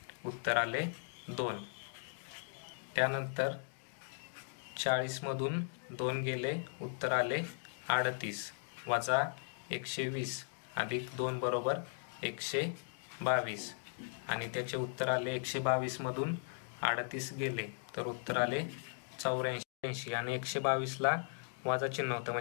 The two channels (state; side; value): silent; right; digital silence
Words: उत्तर आले 2. त्यानंतर 40 मधून 2 गेले, उत्तर आले 38 वजा 120 अधिक 2 बरोबर 122 आणि त्याचे उत्तर आले 122 मधून 38 गेले तर उत्तर आले 84 आणि 122 ला वजा चिन्ह होतं